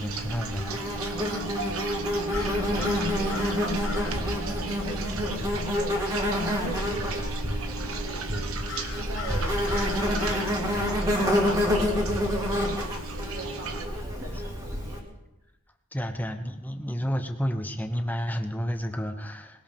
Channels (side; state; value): both; normal; correlation 0.66